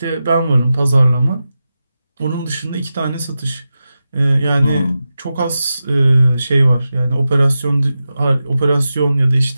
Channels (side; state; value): both; inverted; correlation -0.92